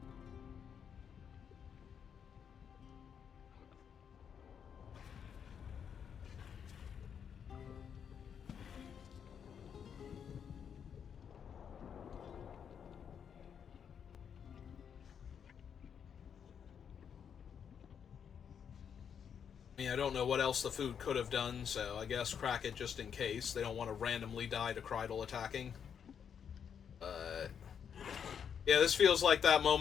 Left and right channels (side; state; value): right; quieter; 7.6 dB